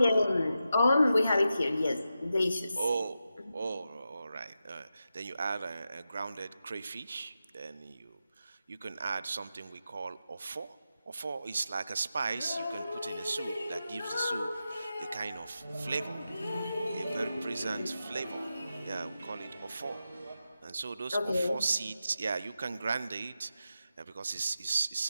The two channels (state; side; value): inverted; both; correlation -0.89